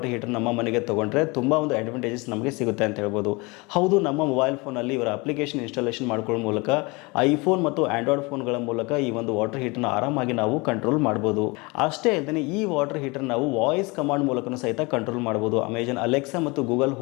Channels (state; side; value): quieter; right; 26.2 dB